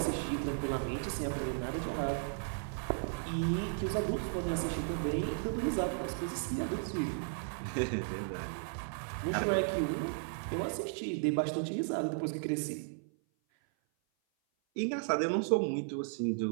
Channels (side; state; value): left; silent; 54 dB below the other